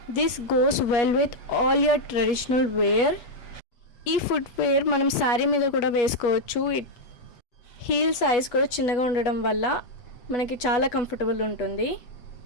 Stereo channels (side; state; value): right; late; 8.4 ms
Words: This goes well with all your traditional wear. ఈ footwear మనం శారీ మీద కూడా వేసుకోవచ్చు. హీల్ సైజ్ కూడా చిన్నగా ఉండడం వల్ల మనకి చాలా కంఫర్టబుల్ ఉంటుంది.